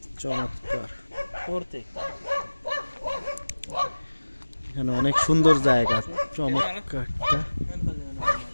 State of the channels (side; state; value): both; inverted; correlation -1.00